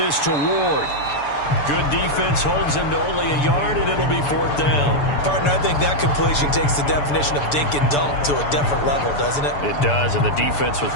to Ward. Good defense holds him to only a yard, and it'll be 4th down. Partner, I think that completion takes the definition of dink and dunk to a different level, doesn't it? It does, and the defense was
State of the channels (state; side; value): late; right; 6.9 ms